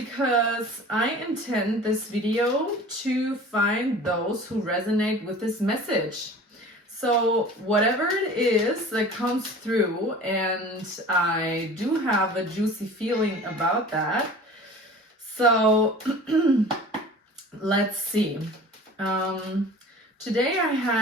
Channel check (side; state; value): both; normal; correlation 0.42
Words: I intend this video to find those who resonate with this message. So whatever it is that comes through, and I do have a juicy feeling about that. So let's see. Today I